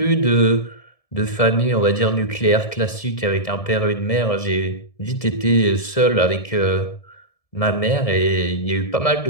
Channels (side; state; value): right; late; 1.7 ms